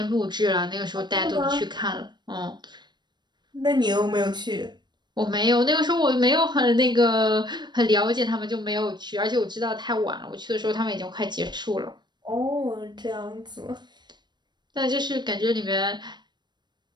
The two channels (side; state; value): left; late; 0.21 ms